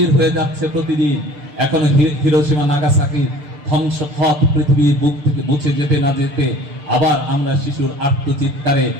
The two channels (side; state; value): left; late; 6.7 ms